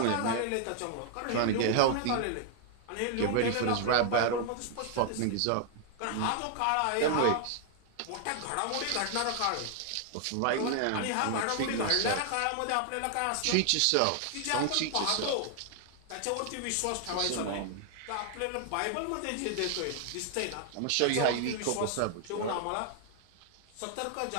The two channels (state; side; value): different; both; correlation 0.00